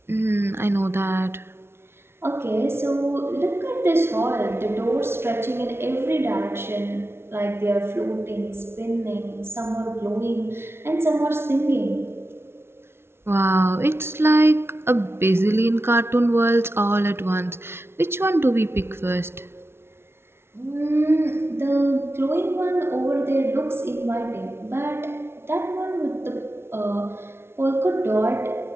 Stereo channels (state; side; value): late; left; 0.12 ms